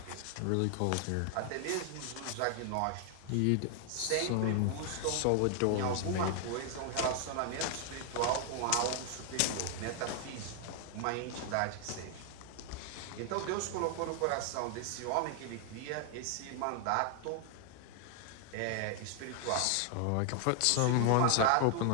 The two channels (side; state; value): both; different; correlation 0.00